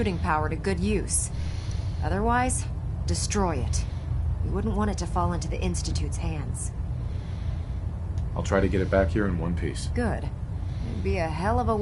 power to good use. Otherwise, destroy it. We wouldn't want it to fall into the Institute's hands. I'll try to get it back here in one piece. Good. It'd be a hell of a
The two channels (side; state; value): both; identical; correlation 1.00